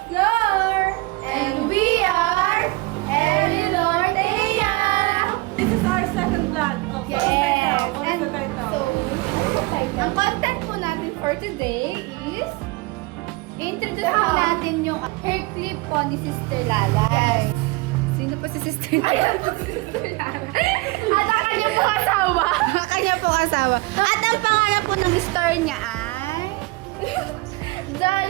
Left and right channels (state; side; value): quieter; left; 23.8 dB